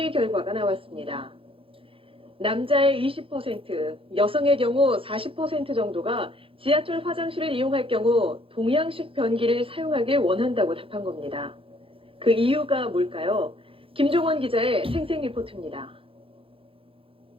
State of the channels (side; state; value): left; late; 0.26 ms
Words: 결과가 나왔습니다. 남자의 20%, 여성의 경우 40% 정도가 지하철 화장실을 이용할 경우 동양식 변기를 사용하길 원한다고 답한 겁니다. 그 이유가 뭘까요? 김종원 기자의 생생 리포트입니다.